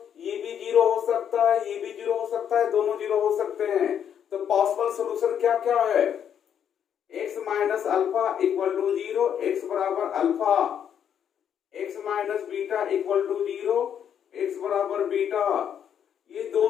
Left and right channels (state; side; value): quieter; right; 8.8 dB